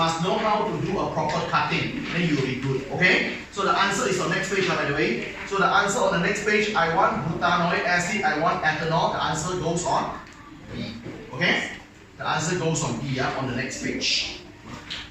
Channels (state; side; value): identical; both; correlation 1.00